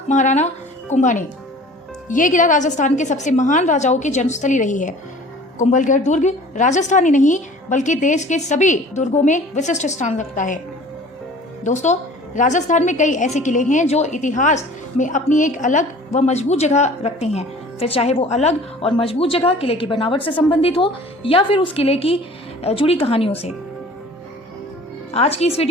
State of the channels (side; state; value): both; normal; correlation 0.46